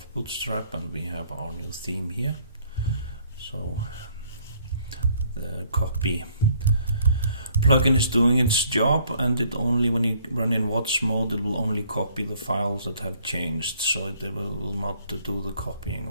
Bootstrap, and we have our new theme here. So the copy plugin is doing its job, and it only, when you run in watch mode, it will only copy the files that have changed, so it will not do the copying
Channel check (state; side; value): inverted; both; correlation -0.62